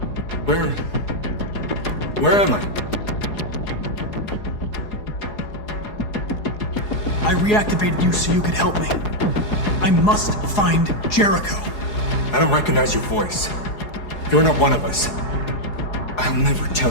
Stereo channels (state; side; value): late; right; 4.8 ms